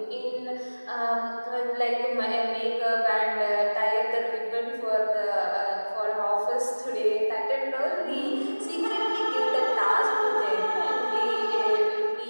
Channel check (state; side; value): inverted; both; correlation -1.00